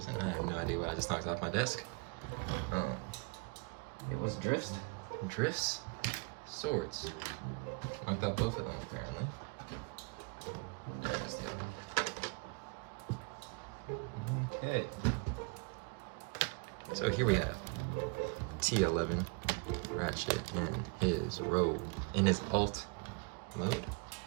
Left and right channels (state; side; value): quieter; left; 32.8 dB